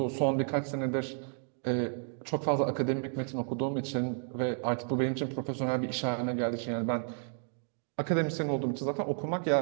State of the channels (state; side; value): silent; left; 56 dB below the other